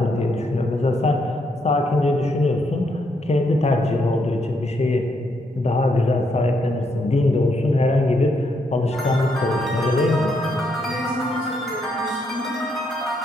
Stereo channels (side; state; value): both; normal; correlation 0.76